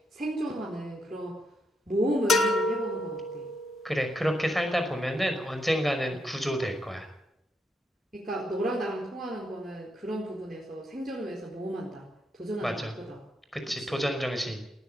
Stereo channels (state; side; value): normal; both; correlation 0.79